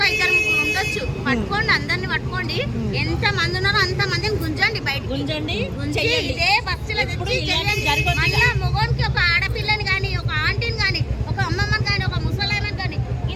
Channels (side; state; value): both; identical; correlation 1.00